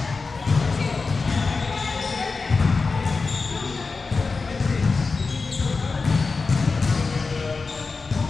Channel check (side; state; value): right; quieter; 4.3 dB